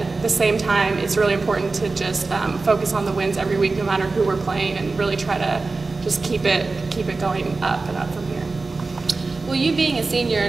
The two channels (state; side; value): quieter; left; 3.8 dB